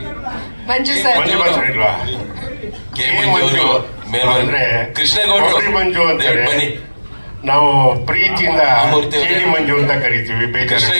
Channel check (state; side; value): inverted; both; correlation -1.00